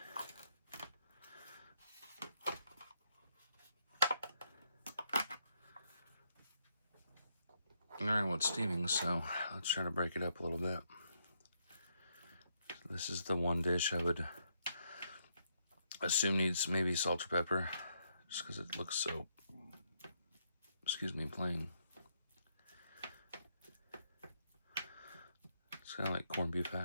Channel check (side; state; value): both; inverted; correlation -0.76